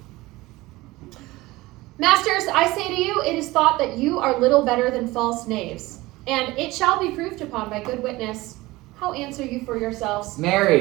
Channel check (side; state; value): left; quieter; 19.8 dB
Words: Masters, I say to you, it is thought that you are little better than false knaves, and it shall be proved upon by good witness. How answer you for yourselves?